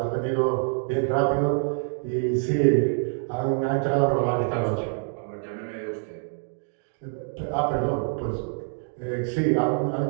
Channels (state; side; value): silent; left; 61 dB below the other